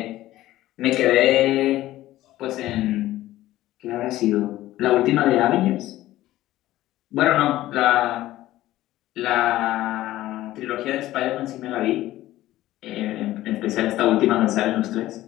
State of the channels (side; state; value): right; quieter; 15.4 dB